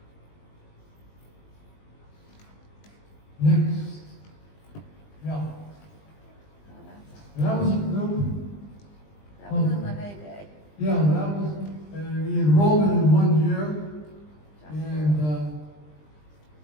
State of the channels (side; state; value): right; late; 20 ms